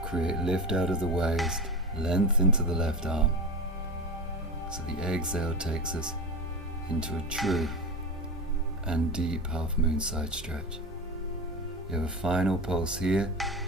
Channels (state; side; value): normal; both; correlation 0.25